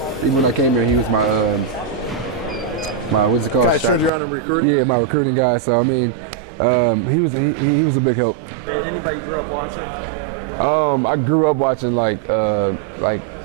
when I came here, he was my what's it called? Guys turned you on in recruiting? Yeah, my recruiting guy. So I mean, he was a big help. Anybody you grew up watching? I grew up watching like a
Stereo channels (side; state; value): left; drops out; at 4.1 s